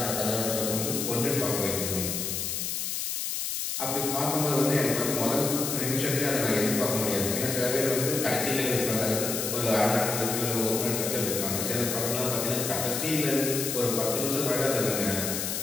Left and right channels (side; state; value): left; noise; hiss, 2 dB below the sound